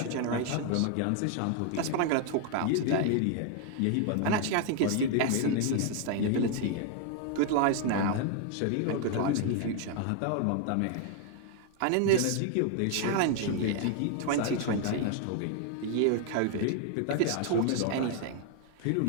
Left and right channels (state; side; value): different; both; correlation 0.00